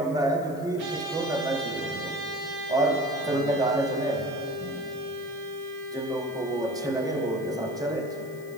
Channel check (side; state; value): left; noise; hiss, 23 dB below the sound